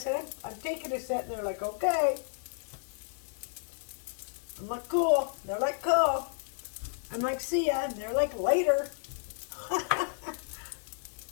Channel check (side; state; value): right; silent; digital silence